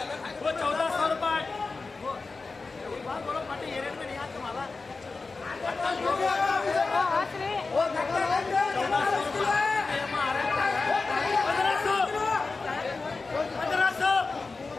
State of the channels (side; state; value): right; quieter; 4.0 dB